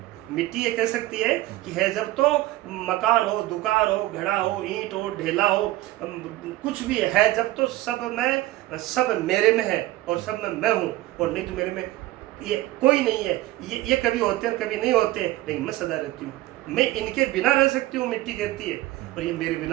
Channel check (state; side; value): quieter; left; 16.9 dB